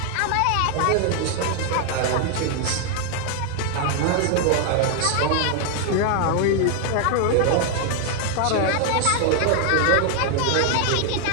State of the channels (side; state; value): both; different; correlation 0.00